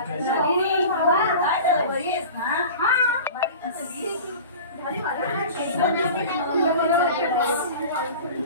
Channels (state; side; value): inverted; both; correlation -0.36